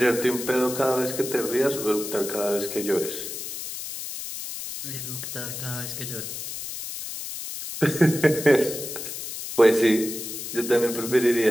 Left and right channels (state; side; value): noise; left; hiss, 7 dB below the sound